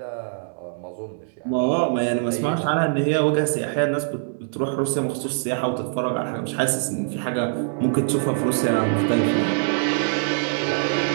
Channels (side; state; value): left; silent; digital silence